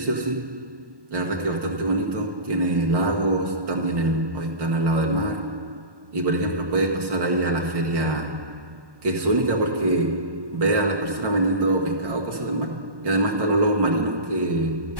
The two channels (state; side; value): late; left; 1.1 ms